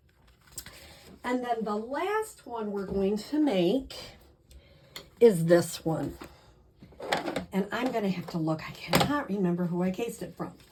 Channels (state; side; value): identical; both; correlation 1.00